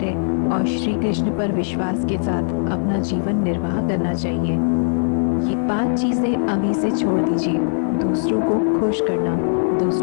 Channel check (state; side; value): silent; right; digital silence